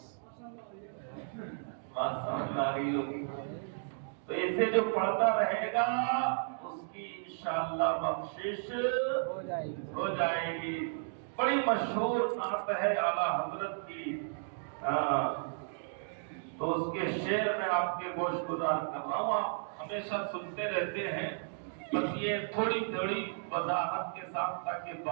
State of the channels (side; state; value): left; silent; digital silence